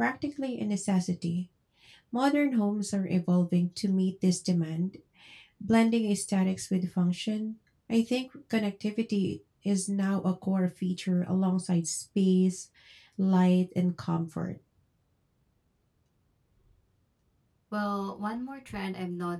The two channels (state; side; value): identical; both; correlation 1.00